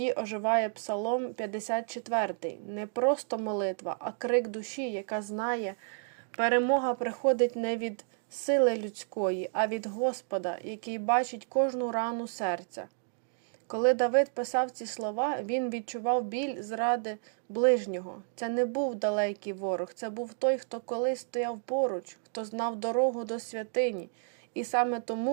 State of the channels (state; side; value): silent; left; digital silence